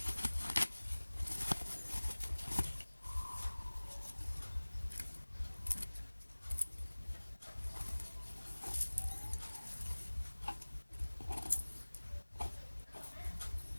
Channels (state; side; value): inverted; both; correlation -1.00